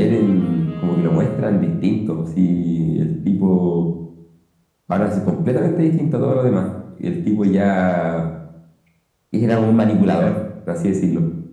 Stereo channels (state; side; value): identical; both; correlation 1.00